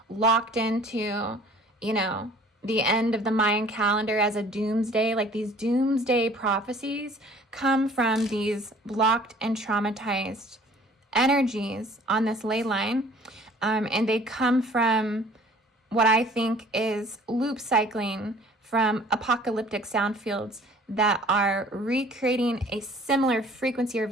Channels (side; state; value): both; normal; correlation 0.52